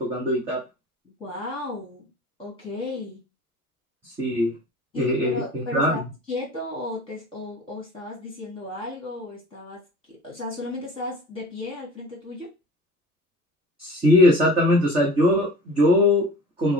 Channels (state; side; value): normal; both; correlation 0.42